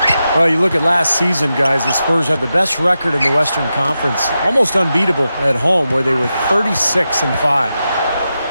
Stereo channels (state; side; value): inverted; both; correlation -0.90